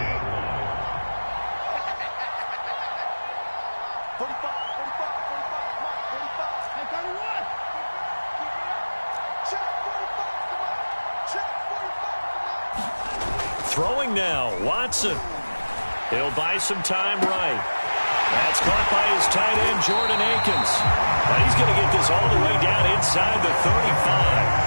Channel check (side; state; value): both; inverted; correlation -1.00